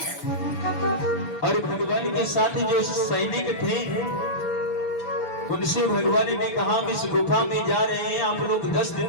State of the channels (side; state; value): right; late; 6.9 ms